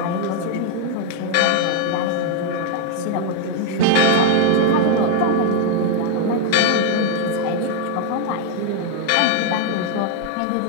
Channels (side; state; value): both; different; correlation 0.01